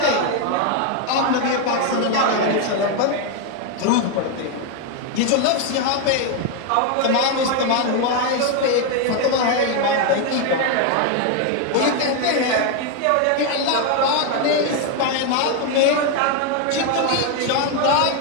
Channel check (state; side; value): different; both; correlation 0.01